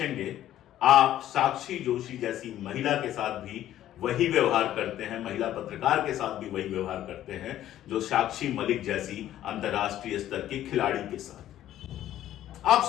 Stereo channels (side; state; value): right; quieter; 12.6 dB